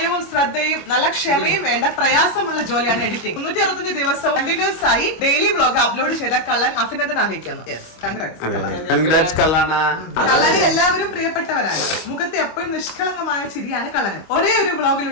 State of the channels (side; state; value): right; late; 25 ms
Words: ശ്രദ്ധയും നല്ല ക്ഷമയും വേണ്ട പ്രയാസമുള്ള ജോലിയാണ് എഡിറ്റിംഗ്. 365 ദിവസവും കണ്ടിന്യൂസ് ആയി ഡെയിലി വ്ലോഗ് അപ്ലോഡ് ചെയ്ത കള്ളൻ അഭിനന്ദനം അറിയിക്കുന്നു. കള്ളനെ എല്ലാവരും പ്രിയപ്പെട്ടവരാണ്. മുഖത്ത് എപ്പോഴും നിഷ്കളങ്കമായ ചിരിയാണ് കള്ളന്. ഒരേ ഒരു